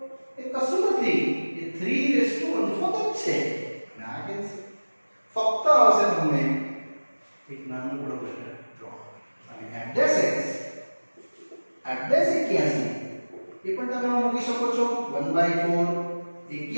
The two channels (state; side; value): inverted; both; correlation -1.00